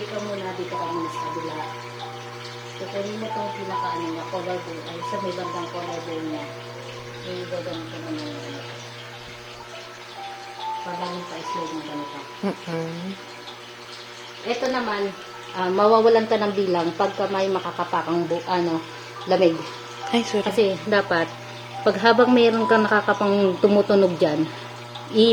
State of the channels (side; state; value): both; identical; correlation 1.00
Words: ka muna, dito ka muna sa kabila. Kukunin mo itong pinaka-ano niya, collarbone, ay sa may bandang collarbone niya. May gaganito mo na yun. Parang pa-slide mo ganito. Ito naman, mawawalan ka ng bilang pagka may makakapakang lamig. Ay, sorry. Kasi dapat, pag habang mayroon kang nakakapang tumutunog dyan,